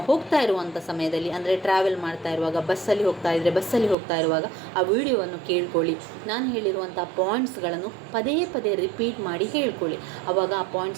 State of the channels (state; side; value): drops out; left; at 4.0 s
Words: ಹೋಗ್ತಾ ಇರುವಂಥ ಸಮಯದಲ್ಲಿ, ಅಂದರೆ ಟ್ರಾವೆಲ್ ಮಾಡ್ತಾ ಇರುವಾಗ, ಬಸ್ಸಲ್ಲಿ ಹೋಗ್ತಾ ಇರುವಾಗ ಆ ವಿಡಿಯೋವನ್ನು ಕೇಳ್ಕೊಳ್ಳಿ. ನಾನು ಹೇಳಿರುವಂಥ ಪಾಯಿಂಟ್ಸ್ಗಳನ್ನು ಪದೇ ಪದೇ ರಿಪೀಟ್ ಮಾಡಿ ಹೇಳ್ಕೊಳ್ಳಿ. ಆವಾಗ ಆ